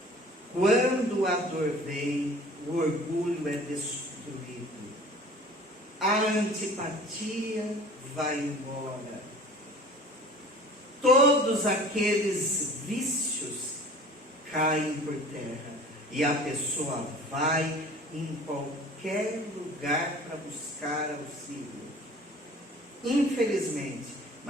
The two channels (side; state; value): both; normal; correlation 0.45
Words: Quando a dor vem, o orgulho é destruído. A antipatia vai embora. Todos aqueles vícios caem por terra. E a pessoa vai em qualquer lugar para buscar auxílio. Infelizmente,